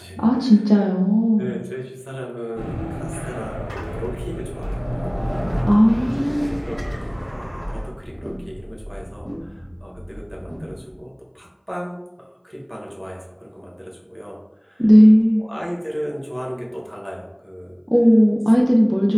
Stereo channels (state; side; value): identical; both; correlation 1.00